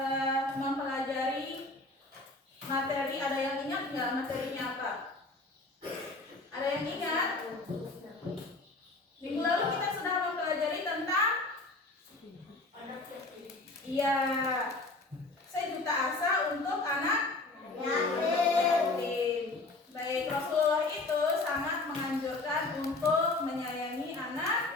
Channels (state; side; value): quieter; right; 3.2 dB